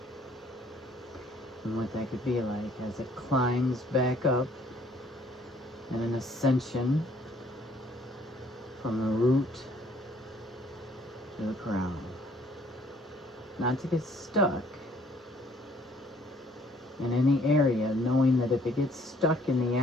And what that could be like as it climbs back up in an ascension from the root to the crown. Not to get stuck in any area, knowing that if it gets stuck in the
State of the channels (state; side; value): normal; both; correlation 0.61